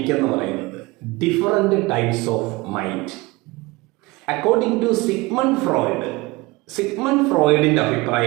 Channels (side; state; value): left; quieter; 22.5 dB